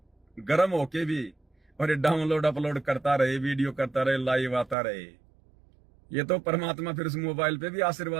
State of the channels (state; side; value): drops out; left; at 4.8 s